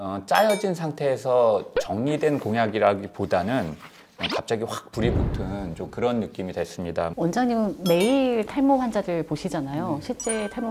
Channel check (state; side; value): identical; both; correlation 1.00